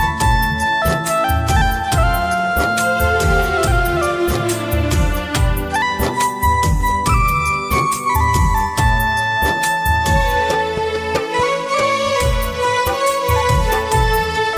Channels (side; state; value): both; identical; correlation 1.00